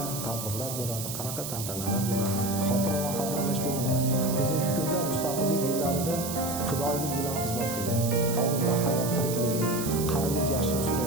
tadbirlar bo'ladi, qanaqa tantanalar bo'ladi, xotira va qadrlash bo'limi. Bugungi kunda mustaqillik yillarida fidoyilik bilan xizmat qilgan, hozirda hayot tirikligi, qarilik yashini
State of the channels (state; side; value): noise; right; hiss, 6 dB below the sound